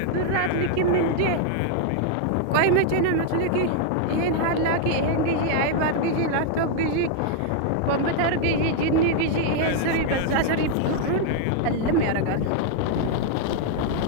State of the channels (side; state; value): both; different; correlation 0.00